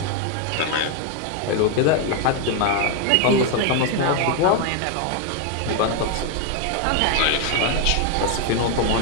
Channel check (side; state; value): both; different; correlation 0.01